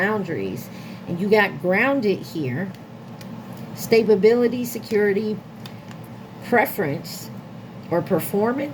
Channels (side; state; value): both; identical; correlation 1.00